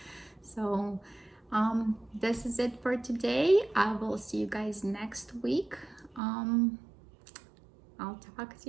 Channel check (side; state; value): left; drops out; at 6.2 s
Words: So This is it for today. I will see you guys next week. I'll talk